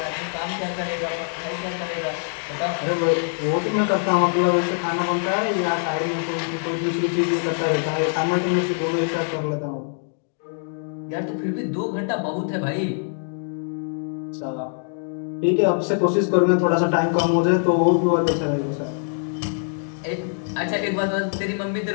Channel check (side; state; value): right; silent; digital silence